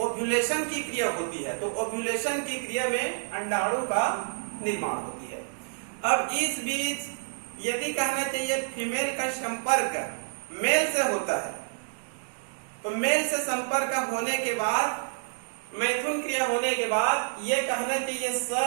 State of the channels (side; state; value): left; silent; 59 dB below the other